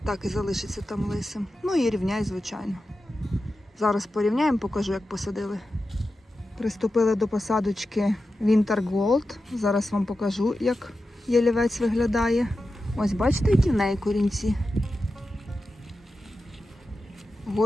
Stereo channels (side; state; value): both; normal; correlation 0.92